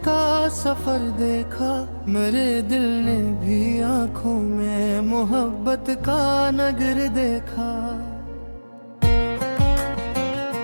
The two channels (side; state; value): both; inverted; correlation -1.00